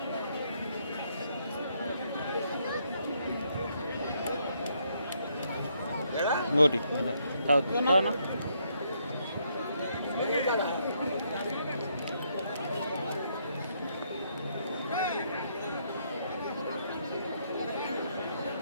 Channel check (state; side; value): inverted; both; correlation -0.74